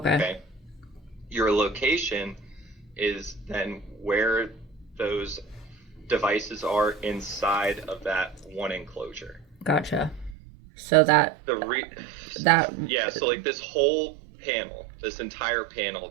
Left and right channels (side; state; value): left; drops out; at 10.4 s